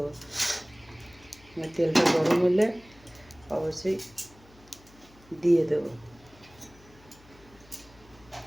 তেলটা গরম হলে অবশ্যই দিয়ে দেবো।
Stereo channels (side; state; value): left; noise; hum, 25 dB below the sound